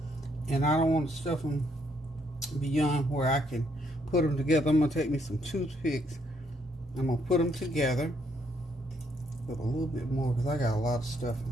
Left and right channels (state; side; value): normal; both; correlation 0.72